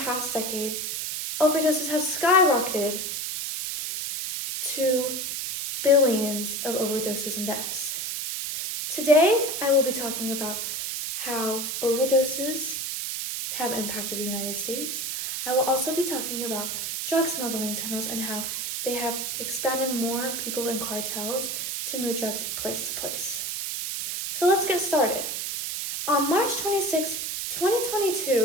decade, overdoses have skyrocketed to billions of overdoses and deaths. Today, I will be talking about how overdoses have impacted the United States. I will also be talking about drug smuggling tunnels and how they have expanded more people in cartels to move drugs place to place. So let's get started. On March 26,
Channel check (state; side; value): noise; right; hiss, 3 dB below the sound